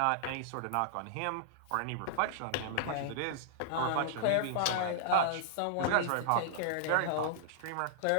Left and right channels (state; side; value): different; both; correlation -0.01